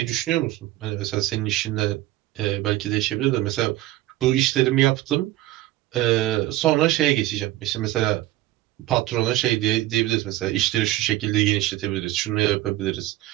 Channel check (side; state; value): left; quieter; 15.9 dB